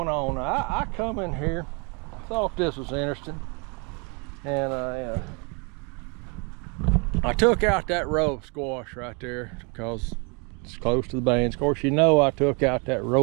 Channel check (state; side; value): quieter; left; 33.4 dB